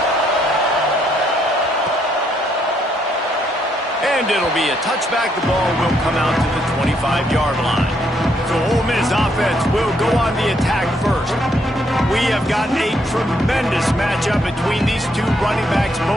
And it'll be a touchback. The ball will come out to the 25-yard line. So Ole Miss offense will go on the attack first. We have got a tremendous matchup between these two running backs,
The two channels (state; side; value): normal; both; correlation 0.73